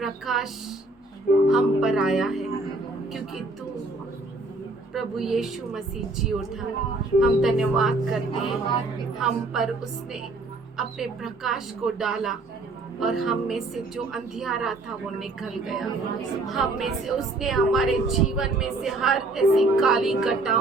प्रकाश हम पर आया है क्योंकि तू प्रभु यीशु मसीह जी उठा। हम धन्यवाद करते हैं, हम पर उसने अपने प्रकाश को डाला और हम में से जो अंधियारा था वो निकल गया। हम में से उसने हमारे जीवन में से हर ऐसी काली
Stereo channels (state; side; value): quieter; left; 3.1 dB